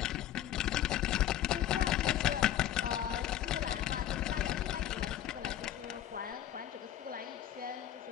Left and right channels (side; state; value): right; quieter; 11.8 dB